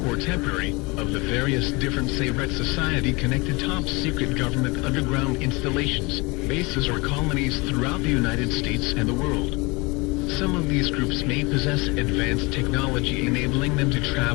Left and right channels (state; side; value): quieter; right; 26.1 dB